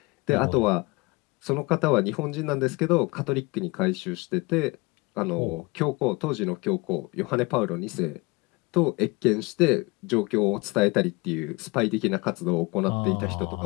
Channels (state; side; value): quieter; right; 25.0 dB